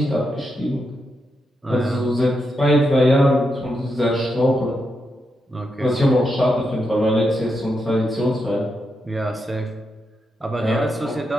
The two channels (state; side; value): normal; both; correlation 0.84